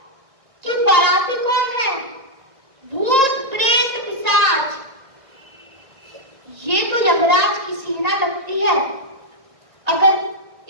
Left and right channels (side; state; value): left; late; 1.8 ms